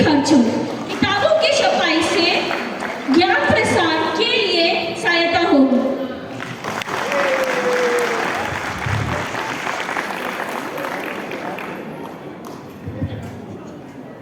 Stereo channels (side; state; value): both; identical; correlation 1.00